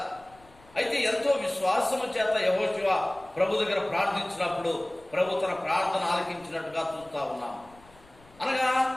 అయితే ఎంతో విశ్వాసము చేత యెహోషువ ప్రభు దగ్గర ప్రార్థించినప్పుడు ప్రభు తన ప్రార్థన ఆలకించినట్టుగా చూస్తా ఉన్నాం. అనగా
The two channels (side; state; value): left; noise; rumble, 27 dB below the sound